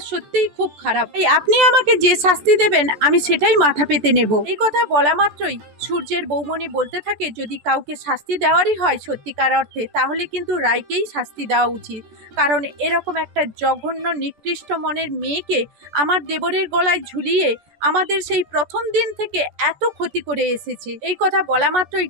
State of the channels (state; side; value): late; left; 14 ms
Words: সত্যিই খুব খারাপ, এই আপনি আমাকে যে শাস্তি দেবেন আমি সেটাই মাথা পেতে নেব। এই কথা বলা মাত্রই সূর্যের বৌমনি বলতে থাকে যদি কাউকে শাস্তি দেওয়ারই হয় সত্যিকার অর্থে, তাহলে কিন্তু রায়কেই শাস্তি দেওয়া উচিত, কারণ এরকম একটা জঘন্য নিকৃষ্ট মনের মেয়েকে আমার দেবরের গলায় ঝুলিয়ে আমাদের সেই প্রথম দিন থেকে এত ক্ষতি করে এসেছে। এই কথা বলা মাত্রই